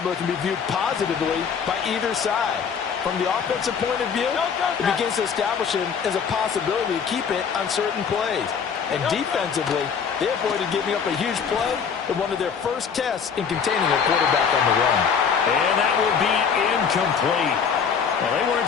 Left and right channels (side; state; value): right; quieter; 6.6 dB